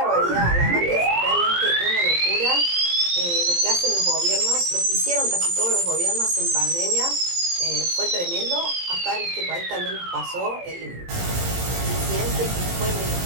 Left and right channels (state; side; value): late; left; 17 ms